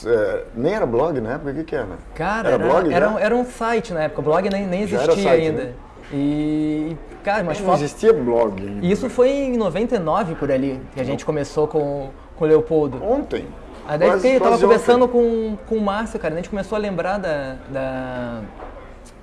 nem era blog na época, o que era? Cara, era blog, né? era um site na época, o blog nem Já era existia site, ainda. né? E, cara, umas Não fotos... existia blog ainda. Isso foi em 99 por ali, que a gente começou com o Leopoldo. Ontem. Aí daí eu tava quase conversando ontem. com o Márcio, cara, a gente começou a lembrar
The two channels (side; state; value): both; identical; correlation 1.00